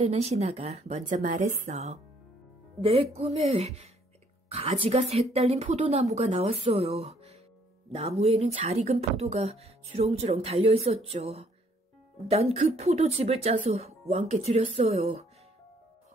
신하가 먼저 말했어. 내 꿈에 가지가 셋 달린 포도나무가 나왔어요. 나무에는 잘 익은 포도가 주렁주렁 달려있었죠. 난 그 포도즙을 짜서 왕께 드렸어요.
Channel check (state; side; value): normal; both; correlation 0.65